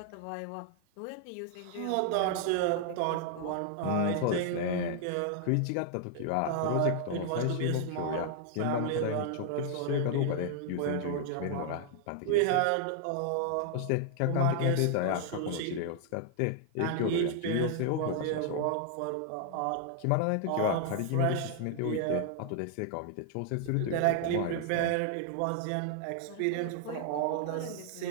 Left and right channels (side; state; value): both; different; correlation 0.00